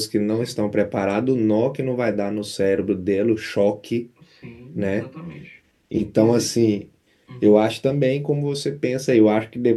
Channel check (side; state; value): both; identical; correlation 1.00